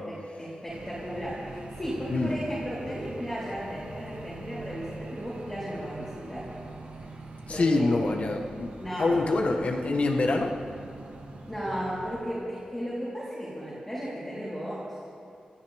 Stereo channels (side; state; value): both; normal; correlation 0.92